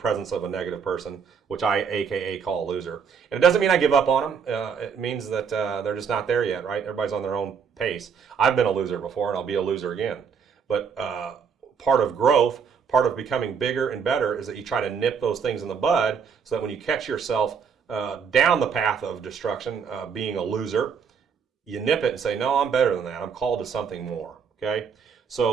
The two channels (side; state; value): left; quieter; 6.5 dB